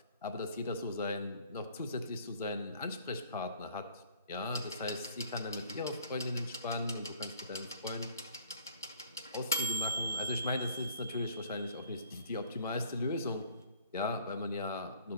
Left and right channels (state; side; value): inverted; both; correlation -0.56